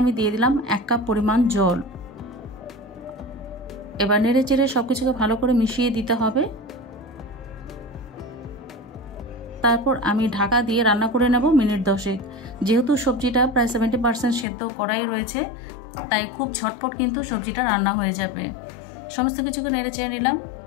আমি দিয়ে দিলাম 1 কাপ পরিমাণ জল। এবার নেড়ে চেড়ে সব কিছুকে ভালো করে মিশিয়ে দিতে হবে। তারপর আমি ঢাকা দিয়ে রান্না করে নেব মিনিট 10। যেহেতু সবজিটা প্রায় 70% সেদ্ধ করাই রয়েছে, তাই খুব ঝটপট কিন্তু সবজিটা রান্না হয়ে যাবে। সমস্ত কিছুকে নেড়ে চেড়ে নিলাম।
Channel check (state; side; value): drops out; right; at 14.5 s